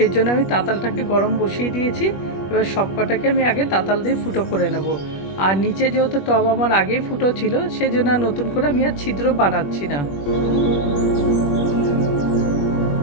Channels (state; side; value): late; right; 21 ms